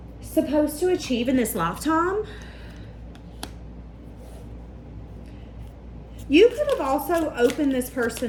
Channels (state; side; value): identical; both; correlation 1.00